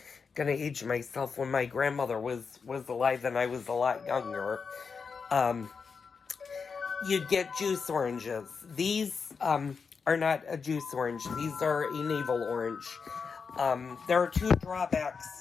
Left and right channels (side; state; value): right; quieter; 5.5 dB